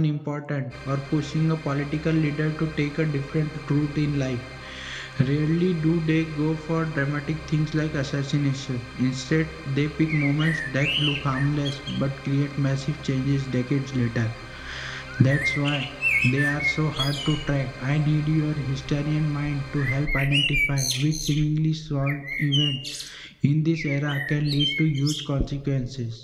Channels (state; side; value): identical; both; correlation 1.00